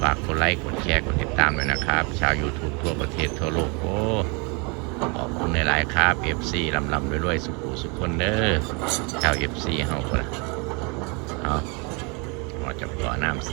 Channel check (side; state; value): left; quieter; 31.7 dB